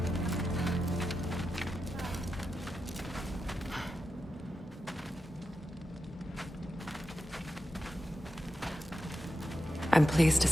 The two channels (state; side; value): normal; both; correlation 0.89